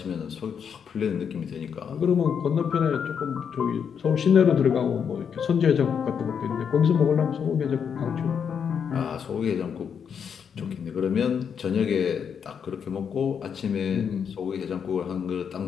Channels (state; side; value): quieter; right; 7.3 dB